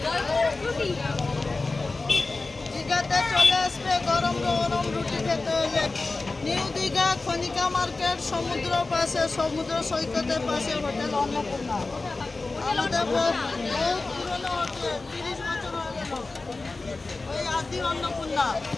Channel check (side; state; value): right; quieter; 3.5 dB